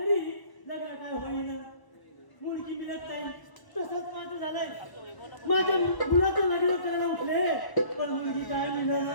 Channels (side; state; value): right; late; 1.0 ms